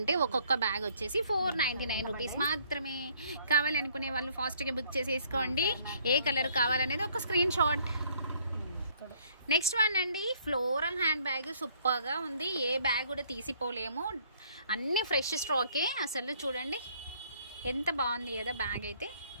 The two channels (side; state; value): both; inverted; correlation -0.62